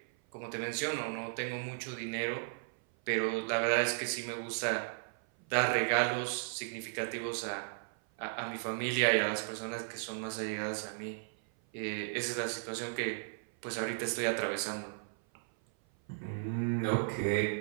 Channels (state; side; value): silent; left; 54 dB below the other